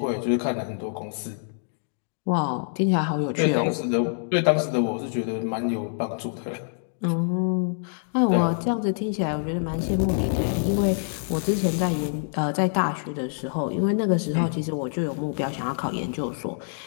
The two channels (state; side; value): silent; right; digital silence